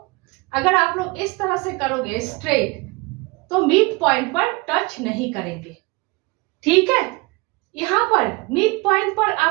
अगर आप लोग इस तरह से करोगे स्ट्रेट, तो मिड पॉइंट पर टच नहीं करेंगे। ठीक है, यहाँ पर मिड पॉइंट पर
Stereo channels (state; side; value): quieter; left; 25.6 dB